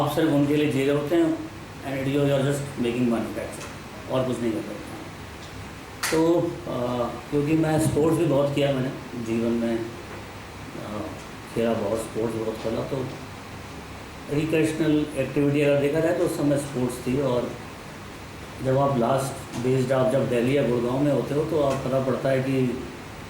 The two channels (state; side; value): identical; both; correlation 1.00